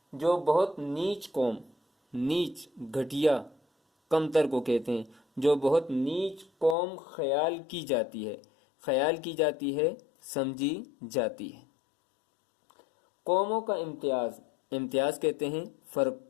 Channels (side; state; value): right; drops out; at 6.8 s